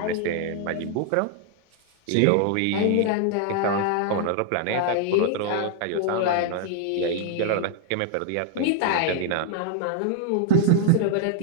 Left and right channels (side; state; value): both; different; correlation 0.00